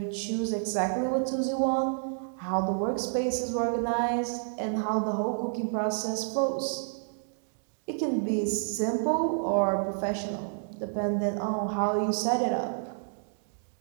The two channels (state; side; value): silent; left; digital silence